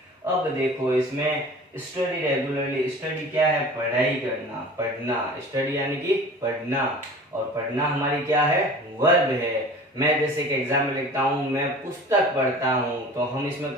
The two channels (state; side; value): normal; both; correlation 0.42